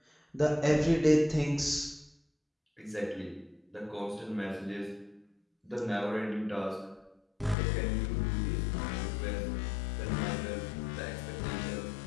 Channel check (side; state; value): right; drops out; at 7.6 s